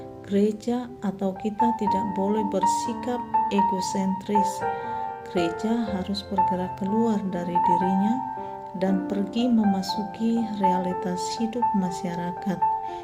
gereja atau kita tidak boleh bersikap egosentris. Gereja harus bergerak keluar dari dirinya dan pergi memasuki realitas hidup masyarakat,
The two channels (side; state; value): both; identical; correlation 1.00